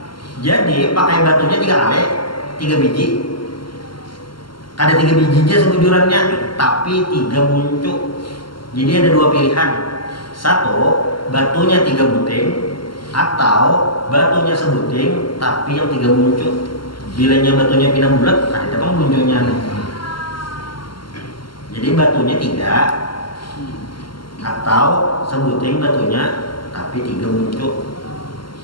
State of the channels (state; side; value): late; right; 0.72 ms